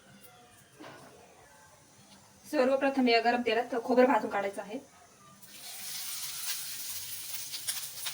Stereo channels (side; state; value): both; identical; correlation 1.00